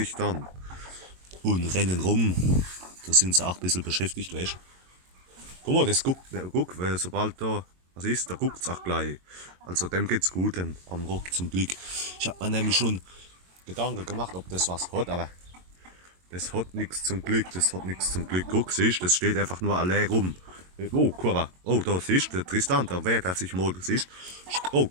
dann. Und rennen rum. Da sind sie auch ein bisschen beschäftigt, weißt du? Guck mal, das guck, weil sobald da was ist, da guckt es auch gleich. Also dem geht's gut, dem am Rock zum Glück. Ich habe mir nämlich schon Gedanken gemacht, ob das was hat, aber das hat nichts zum Glück, das hat nichts zum Glück. Guck, siehst, das steht einfach nur allein rum. Oh, Kurva. Oh, da siehst der Tristan, da wehrt er sich mal, siehst. Oh,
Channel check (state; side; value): late; left; 22 ms